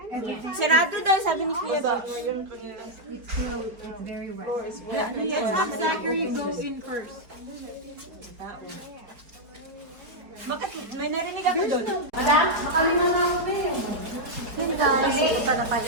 Sarado daw, sabi ni Kuya Bob. It's very wet. Let's have Zachary go in first. May narinig ako doon. Yun guys, punta na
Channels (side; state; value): left; late; 4.9 ms